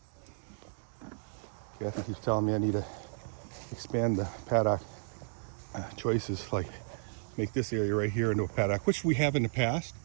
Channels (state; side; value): silent; left; digital silence